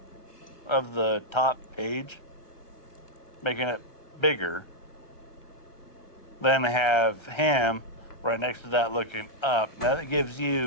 of the top page, making it bigger. Then have him right next to that looking up. Now that gives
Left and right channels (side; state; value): right; late; 1.3 ms